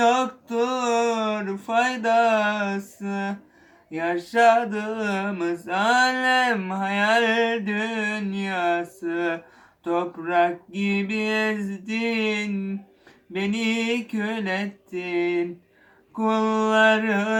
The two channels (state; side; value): identical; both; correlation 1.00